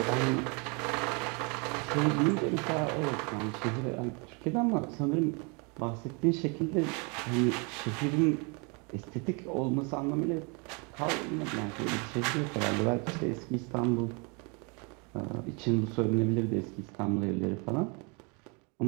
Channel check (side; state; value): left; quieter; 32.6 dB